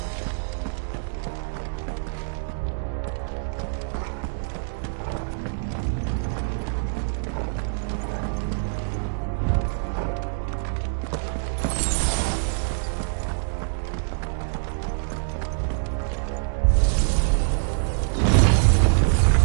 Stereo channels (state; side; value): silent; left; 62 dB below the other